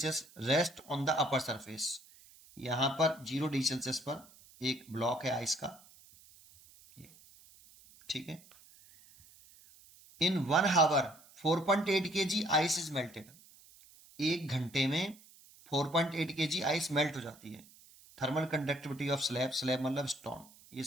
rest on the upper surface, यहां पर 0 डिग्री सेल्सियस पर एक ब्लॉक है आइस का, ये, ठीक है। In 1 hour 4.8 kg ice is melted, एक घंटे में 4.8 kg आइस मेल्ट हो जाती है। Thermal conductivity of slab, slab मतलब स्टोन, ये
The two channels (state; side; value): noise; right; hiss, 24 dB below the sound